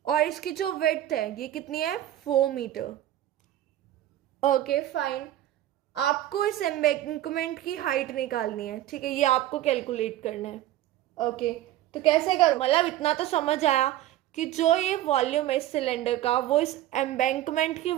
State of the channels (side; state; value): left; quieter; 13.5 dB